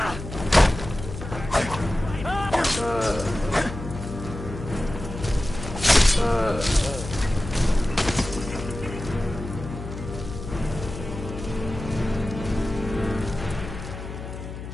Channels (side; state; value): left; noise; hum, 9 dB below the sound